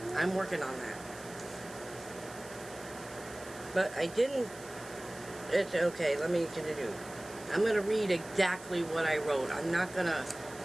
I'm working on that. But I didn't... It's okay, let me continue. I'm going to read exactly what I wrote. I'm not going to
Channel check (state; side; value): noise; right; hiss, 18 dB below the sound